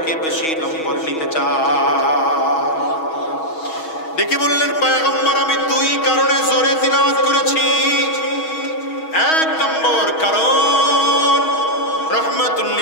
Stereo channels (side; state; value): right; late; 6.3 ms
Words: বেশি নম্বর নিতে চাই। ডেকে বললেন, পয়গম্বর আমি দুই কারণে জোরে তিলাওয়াত করেছি। এক নম্বর কারণ, রাহমাতুল